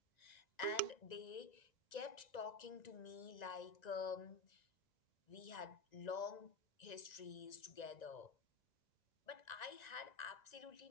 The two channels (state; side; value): late; right; 1.9 ms